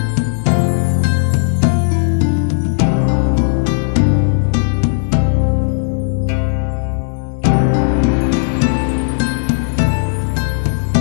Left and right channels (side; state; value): right; silent; digital silence